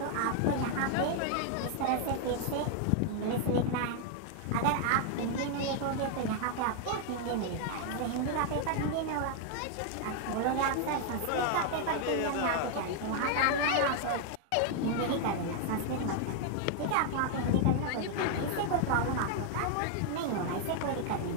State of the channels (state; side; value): different; both; correlation 0.00